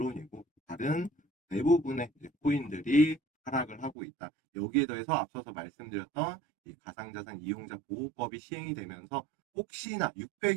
다른 대부분의 코인들이 하락을 하고 있다. 여기에 더해서 앞서서 말씀드렸던 이 가상자산 이용자 보호법이 시행이 되면서 혹시나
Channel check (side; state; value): left; drops out; at 4.0 s